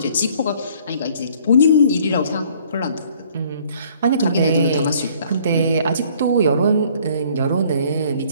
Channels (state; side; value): inverted; both; correlation -0.58